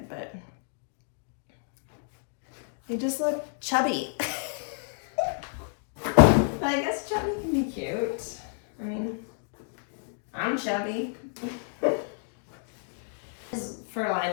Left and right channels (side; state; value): right; silent; 58 dB below the other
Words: but they just look chubby. But I guess chubby can be cute. I mean, I'm chubby. This is Fur-lined,